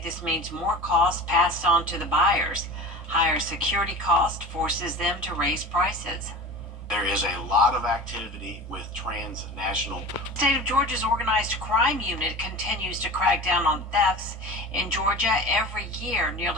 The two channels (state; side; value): normal; both; correlation 0.36